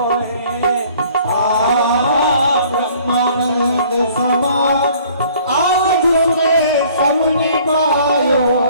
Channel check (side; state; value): both; inverted; correlation -0.55